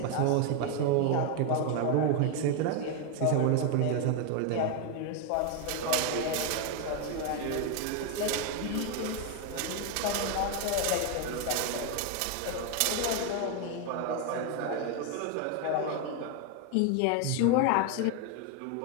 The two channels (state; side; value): different; both; correlation 0.01